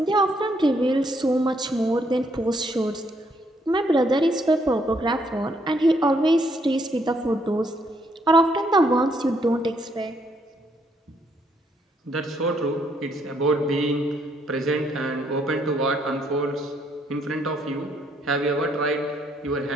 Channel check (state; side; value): normal; both; correlation 0.71